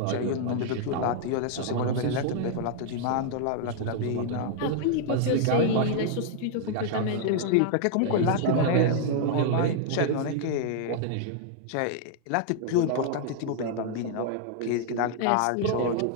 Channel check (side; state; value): both; different; correlation -0.01